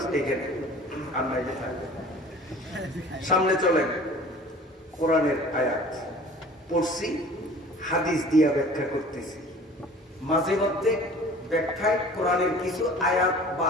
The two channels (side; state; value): both; normal; correlation 0.46